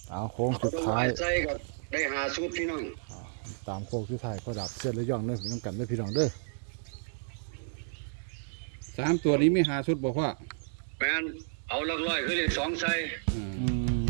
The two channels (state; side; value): silent; left; digital silence